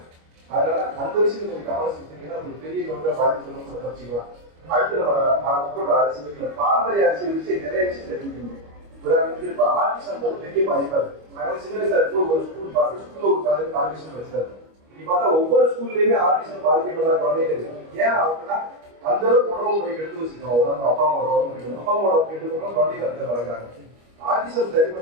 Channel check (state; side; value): late; left; 25 ms